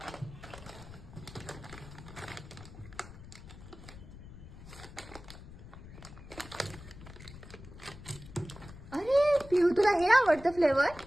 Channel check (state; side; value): noise; left; rumble, 15 dB below the sound